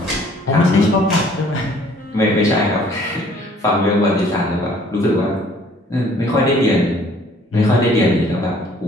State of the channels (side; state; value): both; normal; correlation 0.57